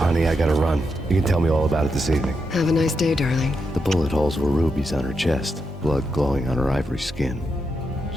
I gotta run. You can tell me all about it this evening. Have a nice day, darling. The bullet holes were rubies on her chest, blood glowing on her ivory skin.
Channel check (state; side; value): normal; both; correlation 0.84